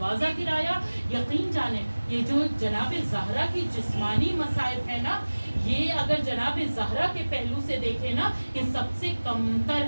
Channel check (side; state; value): both; inverted; correlation -1.00